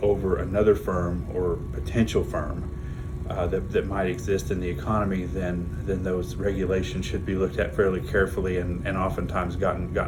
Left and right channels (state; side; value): identical; both; correlation 1.00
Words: another firm or potential firm that might exist in the economy, then those regulations should be looked at fairly carefully and oftentimes